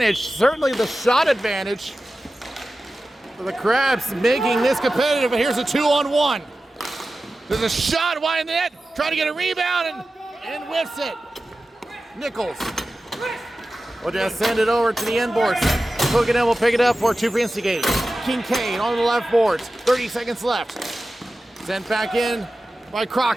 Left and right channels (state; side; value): normal; both; correlation 0.94